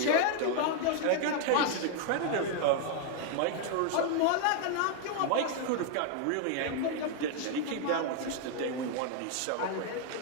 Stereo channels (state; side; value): different; both; correlation 0.00